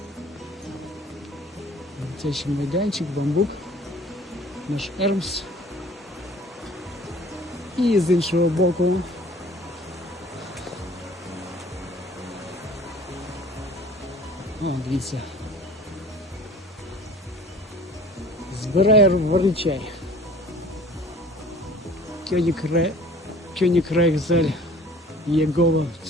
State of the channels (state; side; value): normal; both; correlation 0.49